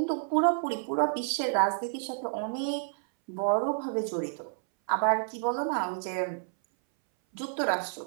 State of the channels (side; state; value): left; silent; 58 dB below the other